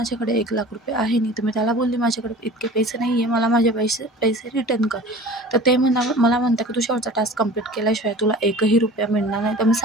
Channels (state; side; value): normal; both; correlation 0.41